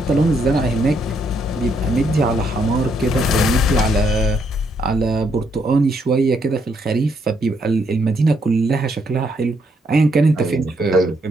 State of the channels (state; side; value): normal; both; correlation 0.74